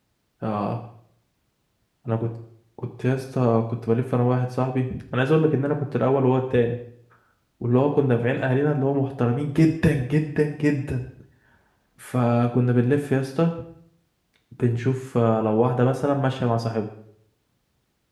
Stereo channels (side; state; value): both; identical; correlation 1.00